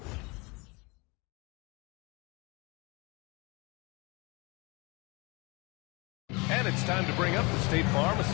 And it's time to bring up the State Farm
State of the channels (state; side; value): quieter; right; 26.1 dB